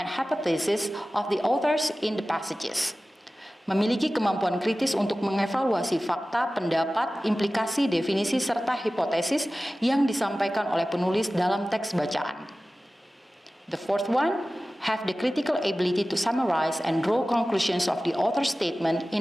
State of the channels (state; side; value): normal; both; correlation 0.96